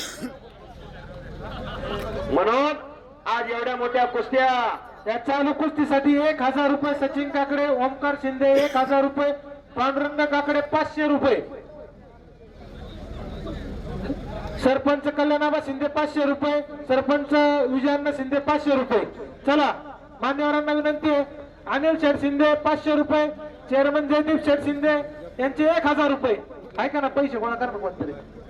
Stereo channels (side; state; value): both; identical; correlation 1.00